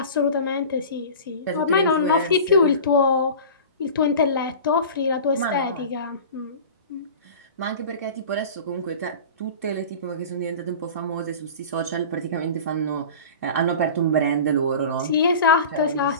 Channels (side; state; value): both; inverted; correlation -0.36